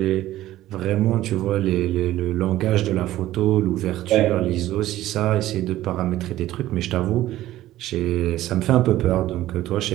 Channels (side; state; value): left; quieter; 14.7 dB